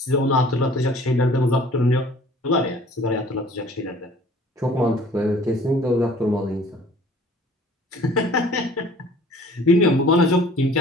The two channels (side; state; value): both; normal; correlation 0.51